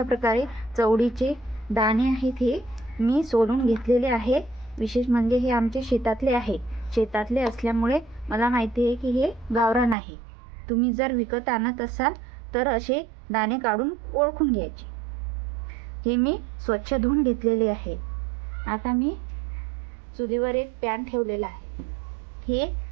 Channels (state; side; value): drops out; left; at 10.0 s